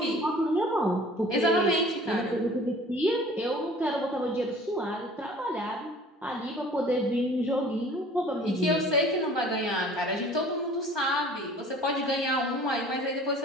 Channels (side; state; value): both; normal; correlation 0.48